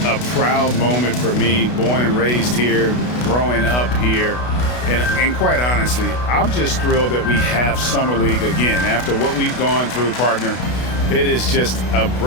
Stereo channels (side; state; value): right; late; 32 ms